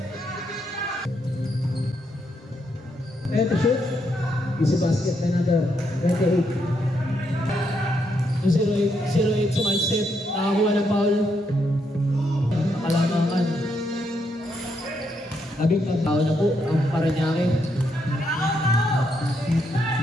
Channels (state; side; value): normal; both; correlation 0.78